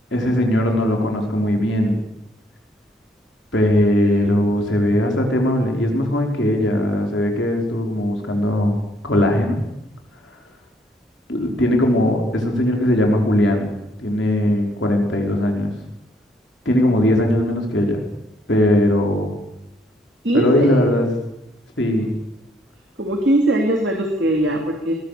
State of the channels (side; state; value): both; normal; correlation 0.68